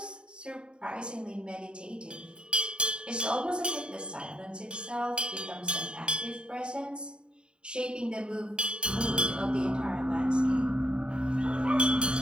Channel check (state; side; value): late; left; 0.051 ms